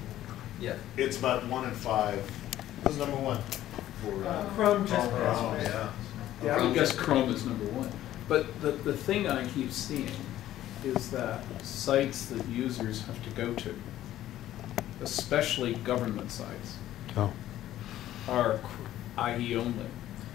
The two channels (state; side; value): quieter; right; 13.3 dB